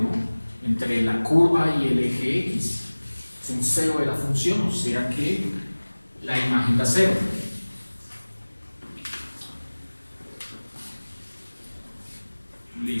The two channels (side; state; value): both; inverted; correlation -1.00